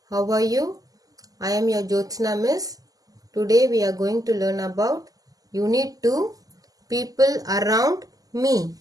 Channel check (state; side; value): late; left; 0.17 ms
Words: how are you? I am your Jyotsna Miss. Today we are going to learn about Unit 2, People Around Me.